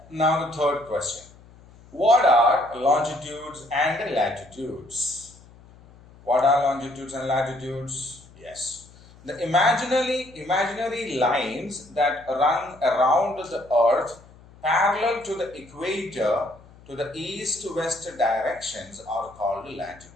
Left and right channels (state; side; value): noise; left; hum, 24 dB below the sound